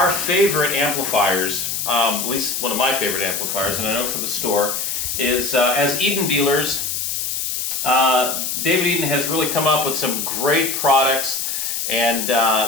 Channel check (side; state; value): left; noise; hiss, 2 dB below the sound